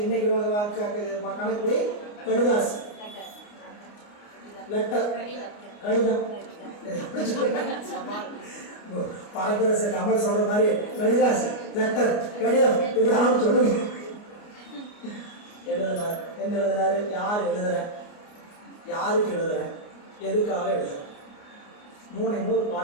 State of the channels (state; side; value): late; right; 29 ms